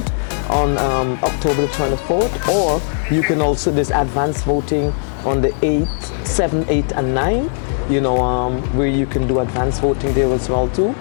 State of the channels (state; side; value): silent; right; digital silence